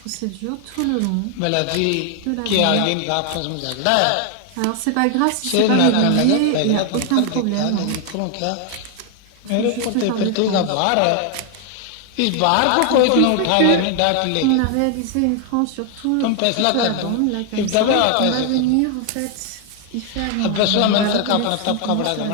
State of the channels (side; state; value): both; different; correlation 0.00